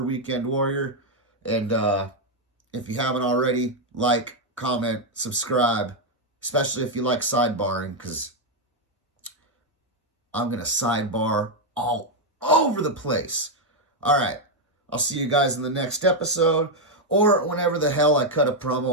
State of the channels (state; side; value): normal; both; correlation 0.01